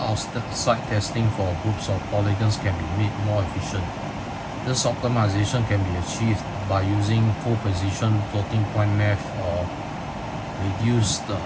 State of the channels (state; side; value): identical; both; correlation 1.00